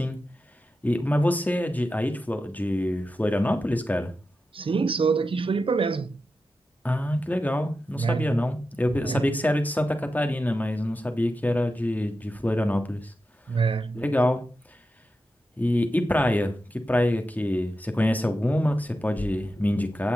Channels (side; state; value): both; normal; correlation 0.90